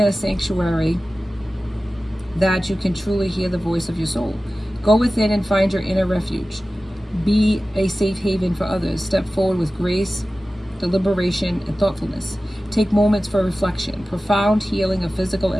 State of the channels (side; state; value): both; normal; correlation 0.96